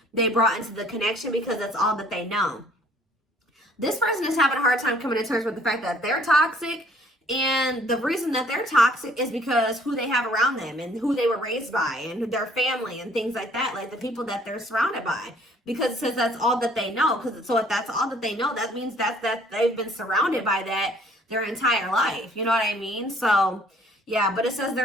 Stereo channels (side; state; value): both; normal; correlation 0.59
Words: they brought into the connection because that's all that they know. This person is having a hard time coming to terms with the fact that they're toxic, and the reason that they're toxic is because who they have around them and who they were raised by and their family and things like that, like the people that they're surrounded by. Because it says that's all that they know. So if that's all that they know, that means that they've been surrounded by that their entire life. You know what I mean? So, yeah, but it says